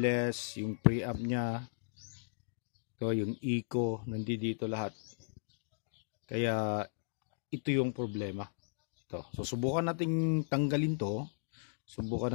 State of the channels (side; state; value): right; silent; digital silence